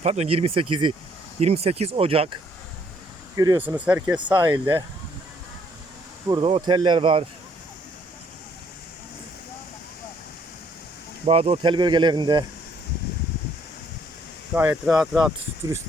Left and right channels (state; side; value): normal; both; correlation 0.66